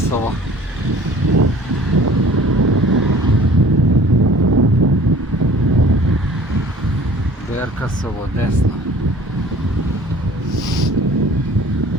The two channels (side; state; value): both; normal; correlation 0.49